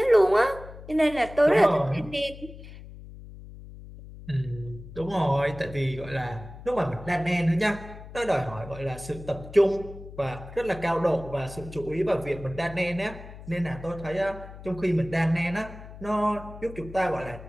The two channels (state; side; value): noise; left; hum, 15 dB below the sound